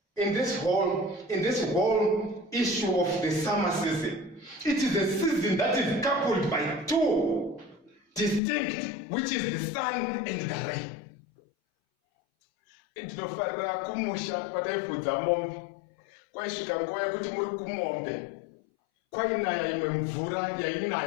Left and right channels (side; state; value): right; drops out; at 8.4 s